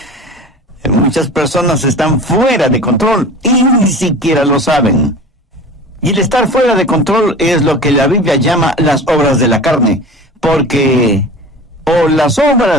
Muchas personas están fuera de control y ni siquiera lo saben. Y el estar fuera de control es lo que la Biblia llama las obras de la carne, porque o las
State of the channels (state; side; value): normal; both; correlation 0.37